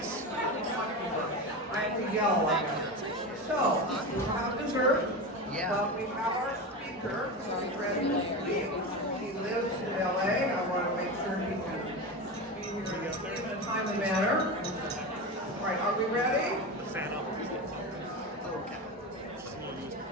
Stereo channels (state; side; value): normal; both; correlation 0.22